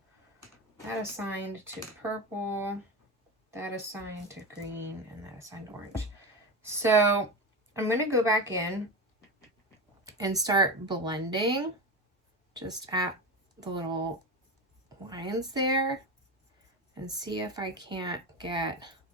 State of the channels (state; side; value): normal; both; correlation 0.21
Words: that assigned to purple, that assigned to green, and that assigned to orange. So I'm going to go back in and start blending just at the little lines there and see if I can't get,